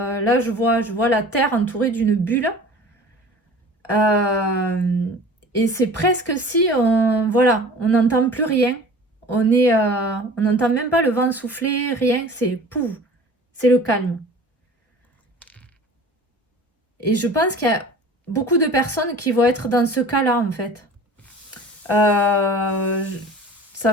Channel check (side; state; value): both; normal; correlation 0.42